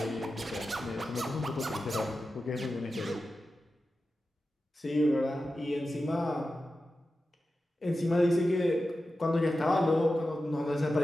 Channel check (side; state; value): both; normal; correlation 0.92